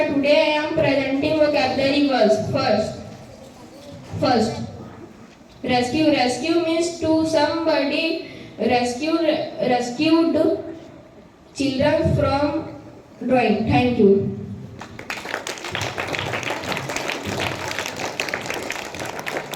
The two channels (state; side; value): identical; both; correlation 1.00